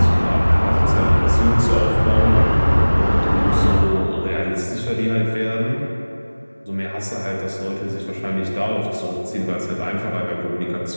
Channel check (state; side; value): inverted; both; correlation -1.00